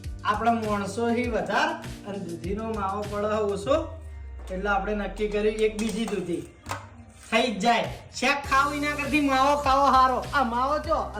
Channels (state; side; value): identical; both; correlation 1.00